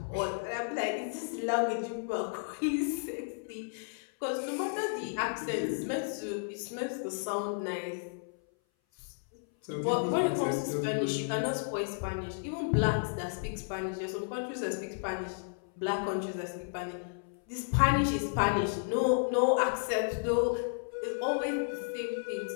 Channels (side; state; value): right; silent; 56 dB below the other